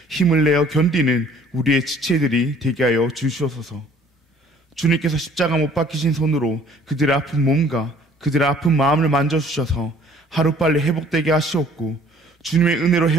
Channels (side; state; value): both; normal; correlation 0.56